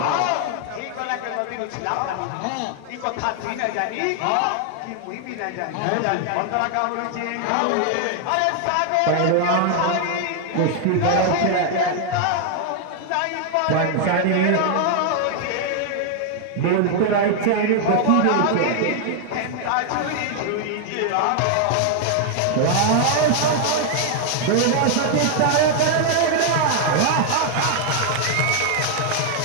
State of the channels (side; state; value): both; different; correlation 0.00